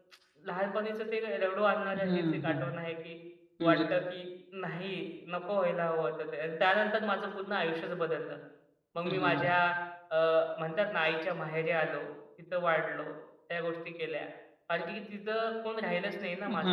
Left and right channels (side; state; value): both; identical; correlation 1.00